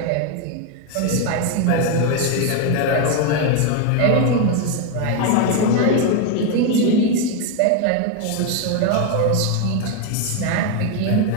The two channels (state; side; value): different; both; correlation 0.01